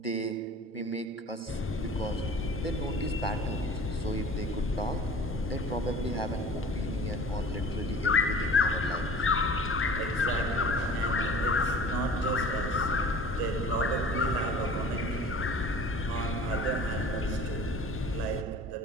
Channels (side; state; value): both; normal; correlation 0.43